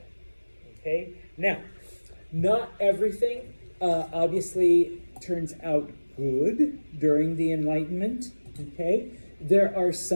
okay? Now, not everything obviously turns out good during the Enlightenment, okay? There are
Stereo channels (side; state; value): both; inverted; correlation -1.00